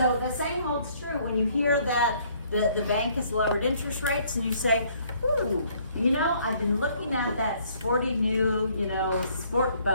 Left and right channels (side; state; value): both; inverted; correlation -0.63